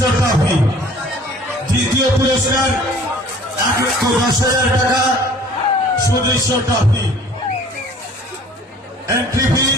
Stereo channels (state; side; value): normal; both; correlation 0.51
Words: ট্রফি। দ্বিতীয় পুরস্কার 1,10,000 টাকা সুদৃশ্য ট্রফি। এন্ট্রি ফি